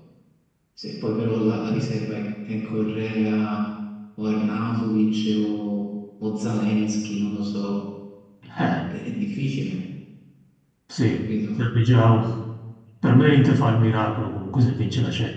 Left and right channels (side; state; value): both; identical; correlation 1.00